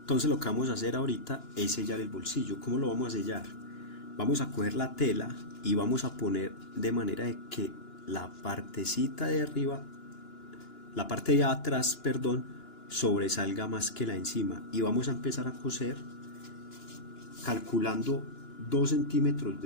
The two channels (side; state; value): right; late; 2.9 ms